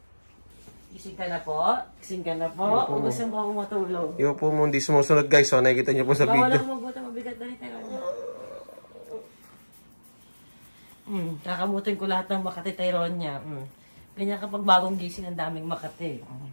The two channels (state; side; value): inverted; both; correlation -1.00